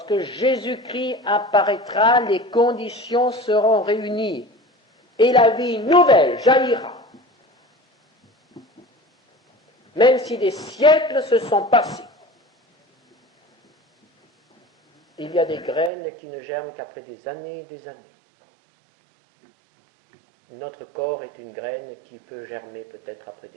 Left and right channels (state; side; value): drops out; left; at 15.9 s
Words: Jésus-Christ apparaîtra, les conditions seront réunies et la vie nouvelle jaillira. Même si des siècles se sont passés. Il y a des graines qui ne germent qu'après des années et des années. Notre corps est une graine qui peut germer peut-être après